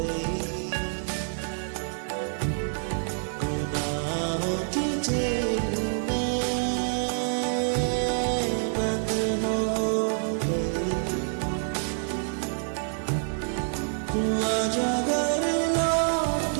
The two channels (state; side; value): silent; left; 60 dB below the other